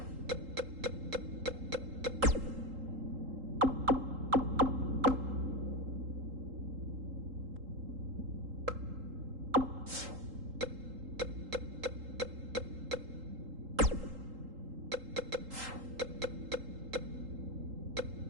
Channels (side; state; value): left; late; 3.8 ms